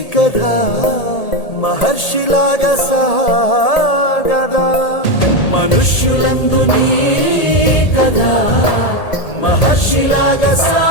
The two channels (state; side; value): late; right; 1.8 ms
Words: కథ మహర్షిలాగా సాగదా. మనుష్యులందు నీ కథ మహర్షిలాగా